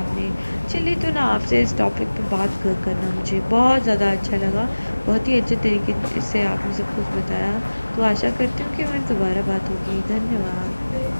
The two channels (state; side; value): inverted; both; correlation -1.00